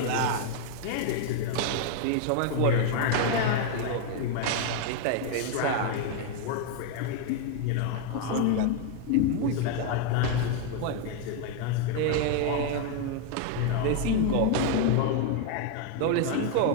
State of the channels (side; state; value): both; different; correlation 0.01